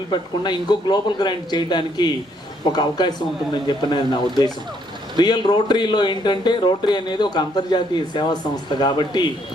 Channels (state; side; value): normal; both; correlation 0.69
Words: ఇంకో గ్లోబల్ గ్రాంట్ చేయడానికి ఒక అవకాశం ఉంటుందని చెప్పినది నా ఉద్దేశం. రియల్ రోటరీలో ఏంటంటే రోటరీ అనేది ఒక అంతర్జాతీయ సేవా సంస్థ కాబట్టి